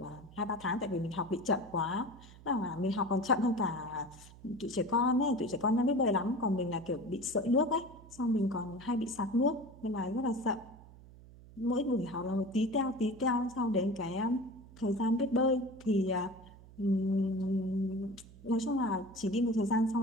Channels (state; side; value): noise; right; hum, 20 dB below the sound